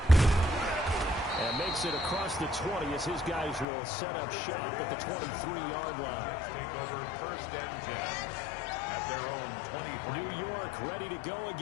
And makes it across the 20 as his guys will set up shop at the 23-yard line. Let's take over 1st and 10. At their own 23. New York ready to go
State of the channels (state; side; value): drops out; right; at 3.7 s